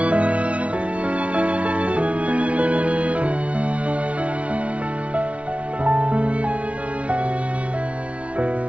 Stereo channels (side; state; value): left; late; 0.063 ms